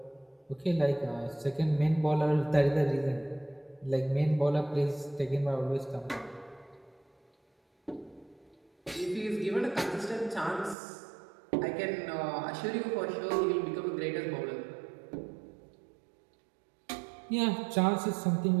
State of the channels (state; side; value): drops out; left; at 10.8 s